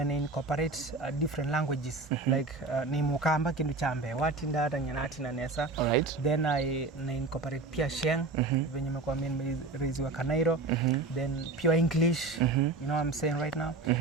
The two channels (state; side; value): quieter; left; 3.5 dB